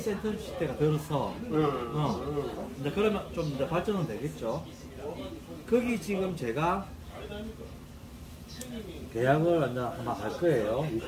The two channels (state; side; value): identical; both; correlation 1.00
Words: 들어서 이제 그러면 좀 이제 발전은 되겠죠. 거기 지금 제가 계약을 이제 아마 할 거예요.